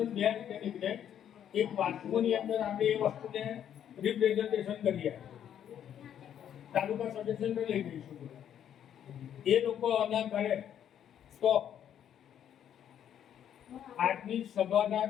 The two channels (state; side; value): quieter; right; 9.7 dB